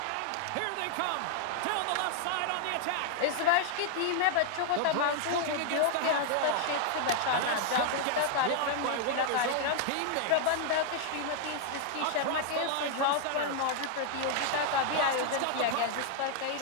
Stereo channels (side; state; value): both; different; correlation 0.00